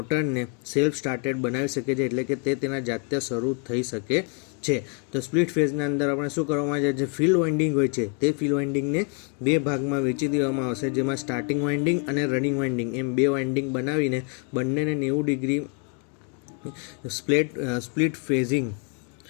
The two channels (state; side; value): quieter; right; 36.9 dB